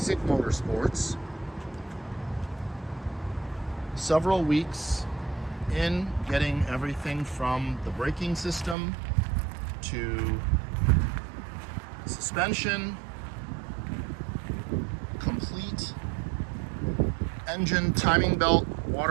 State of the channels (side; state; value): left; drops out; at 8.8 s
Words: Motorsports. Several weeks in getting everything from the braking system to suspension, complete engine, timing belt,